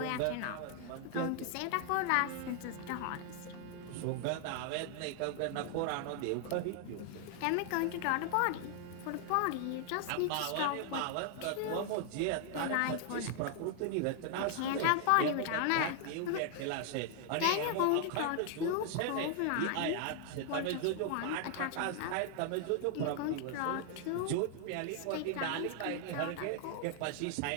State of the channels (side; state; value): both; different; correlation 0.00